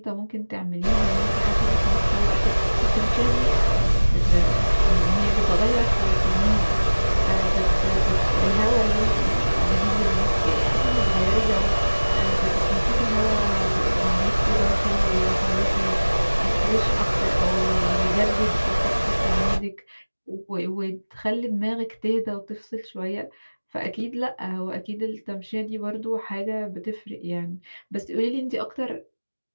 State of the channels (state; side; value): inverted; both; correlation -1.00